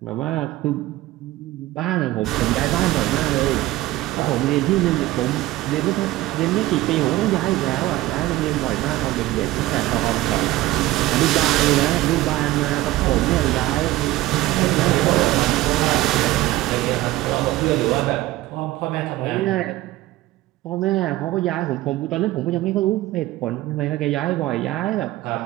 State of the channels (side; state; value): left; quieter; 16.6 dB